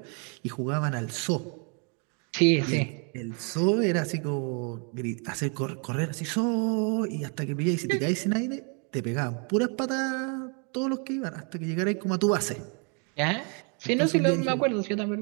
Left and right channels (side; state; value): left; quieter; 37.2 dB